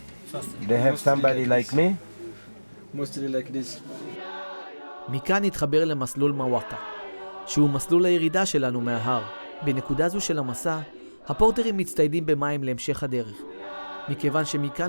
They have somebody like me? Mostly like this. מכאן נתחבר למסלול מוואקה, שהוא מסלול הירידה שלנו מההר. בנקודה זו של המסע, הפורטרים מצטיידים במים להמשך הדרך, מכיוון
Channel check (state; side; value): inverted; both; correlation -1.00